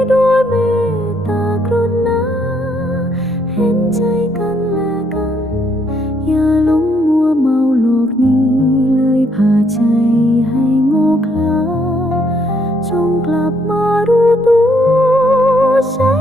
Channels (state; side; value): normal; both; correlation 0.71